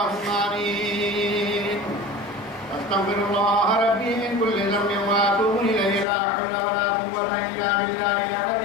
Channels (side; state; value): right; drops out; at 6.1 s